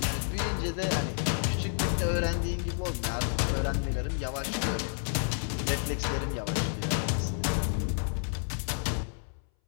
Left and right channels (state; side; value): silent; right; 58 dB below the other